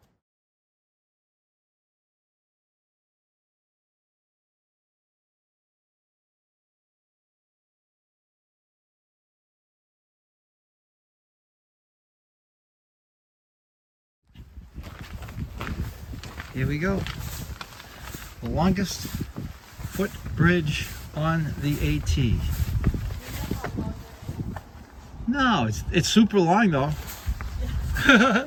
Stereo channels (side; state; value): both; identical; correlation 1.00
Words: Here we go. The longest footbridge on the AT. No, it's super long though. The